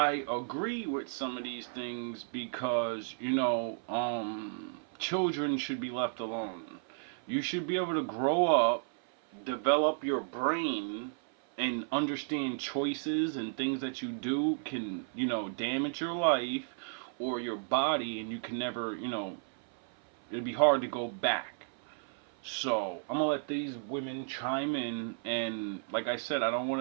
agree with some of these things because, children should be left alone. You should be able to grow up, develop your brain, and understand choices and things that you do can, damage your life or your body, and you can never, it'd be hard to go back. So I'm gonna let these women chime in, and like I said, I don't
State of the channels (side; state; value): left; silent; 56 dB below the other